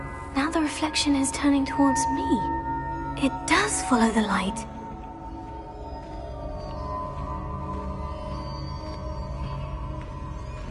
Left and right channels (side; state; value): both; identical; correlation 1.00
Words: Now the reflection is turning towards me. It does follow the light.